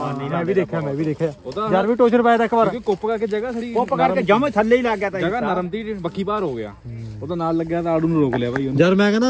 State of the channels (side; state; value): both; identical; correlation 1.00